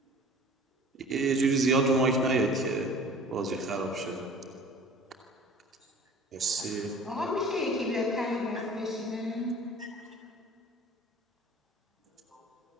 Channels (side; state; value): both; normal; correlation 0.45